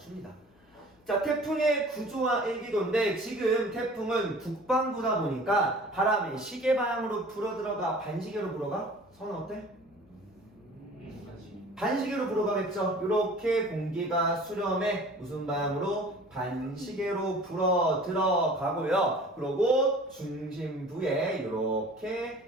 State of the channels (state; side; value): noise; left; hum, 30 dB below the sound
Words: 자, 태풍의 구조와 일기도인데 지금 태풍은 북반구다 보니까 바람이 시계 방향으로 불어들어가 반시계로 불어가? 선은 어때? 반시계로 불어가겠죠. 이렇게 공기가 수렴에 무슨 방향으로? 반시계로 불어 들어가고요. 그리고 중심부에